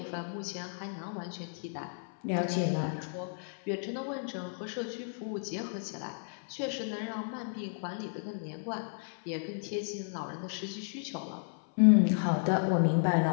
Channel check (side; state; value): right; silent; 56 dB below the other